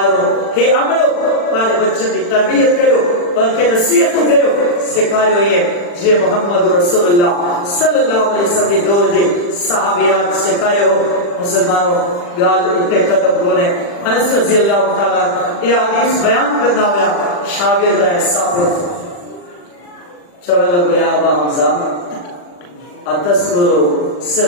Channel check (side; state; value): right; late; 40 ms